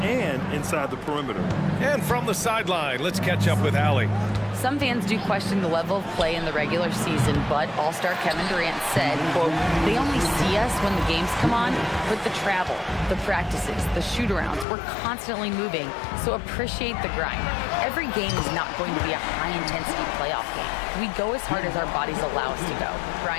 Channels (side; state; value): right; drops out; at 14.7 s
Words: and inside the perimeter. And from the sideline, let's catch up with Allie. Some fans do question the level of play in the regular season, but All-Star Kevin Durant said, quote, they only see us when the games come on, but the travel, the practices, the shoot-arounds, we're constantly moving, so appreciate the grind. Every game is not going to be a high-intensity playoff game. We go as hard as our bodies allow us to go.